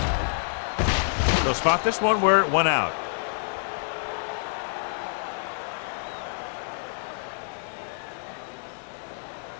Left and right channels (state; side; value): silent; right; digital silence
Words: They'll spot this one where it went out.